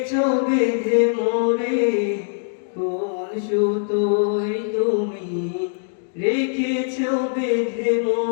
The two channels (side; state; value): right; silent; digital silence